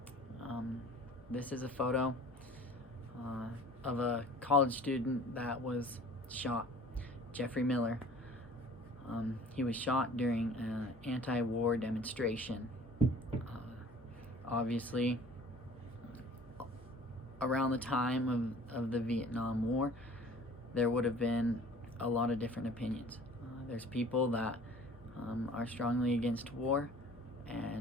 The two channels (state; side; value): normal; both; correlation 0.48